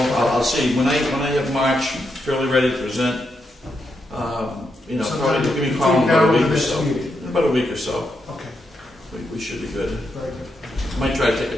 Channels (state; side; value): normal; both; correlation 0.82